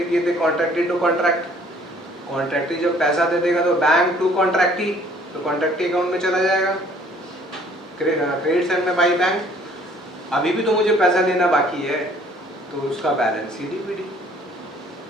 किए थे कॉन्ट्रैक्टी टू कॉन्ट्रैक्ट, कॉन्ट्रैक्टी जब पैसा दे देगा तो बैंक टू कॉन्ट्रैक्टी, तो कॉन्ट्रैक्टी अकाउंट में चला जाएगा, क्रेडिट साइड में बाई बैंक। अभी भी तो मुझे पैसा देना बाकी है, तो उसका बैलेंस सीडीपीडी।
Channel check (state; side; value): normal; both; correlation 0.57